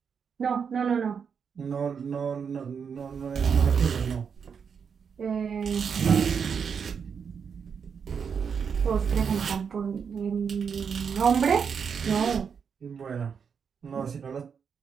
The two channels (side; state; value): left; quieter; 6.6 dB